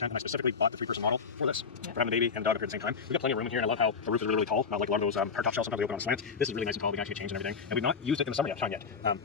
and I specifically bought the 3-person model for this. For having a baby and a dog up here at the same time. We've got plenty of room in here, and I love how the roof is really, really tall. Not like a lot of those hardtop shells sometimes they open on slants. This is really nice and tall. We can actually change and everything. And we've not used it in the summer time yet.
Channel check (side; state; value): right; quieter; 5.5 dB